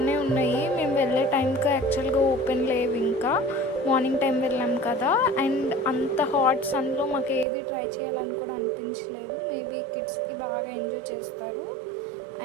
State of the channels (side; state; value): left; drops out; at 7.5 s